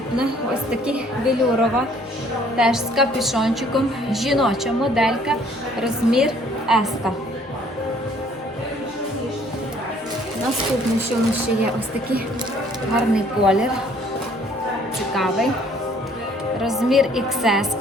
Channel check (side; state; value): both; normal; correlation 0.59